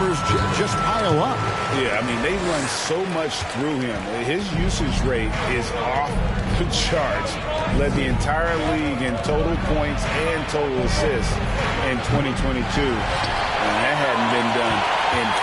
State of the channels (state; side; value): identical; both; correlation 1.00